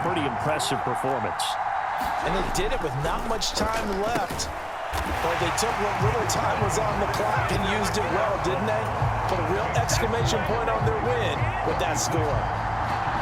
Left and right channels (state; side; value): identical; both; correlation 1.00